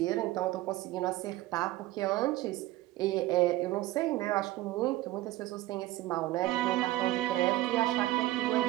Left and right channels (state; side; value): quieter; left; 17.3 dB